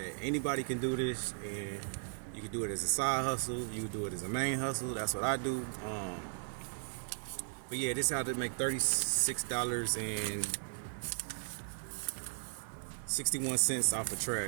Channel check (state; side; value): silent; left; digital silence